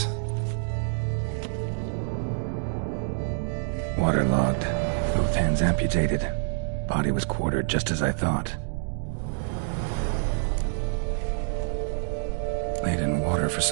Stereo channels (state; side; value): silent; left; digital silence